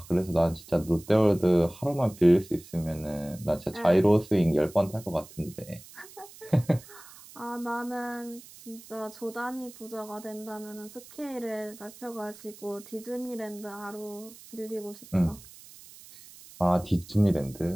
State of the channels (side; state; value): right; noise; hiss, 19 dB below the sound